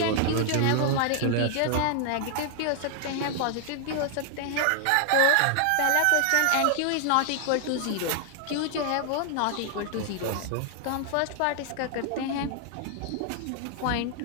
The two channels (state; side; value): different; both; correlation 0.00